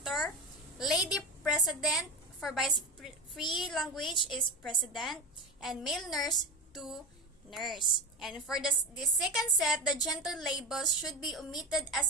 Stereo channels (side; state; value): both; normal; correlation 0.23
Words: Lady president for bias-free language is president, and male nurse to nurse. And for the second set, the gender labels should be omitted